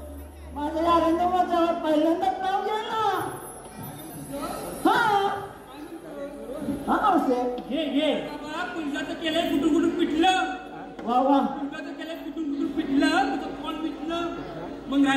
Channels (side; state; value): both; identical; correlation 1.00